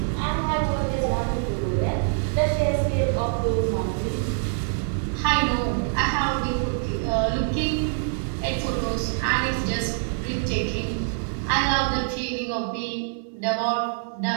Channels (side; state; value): left; silent; 62 dB below the other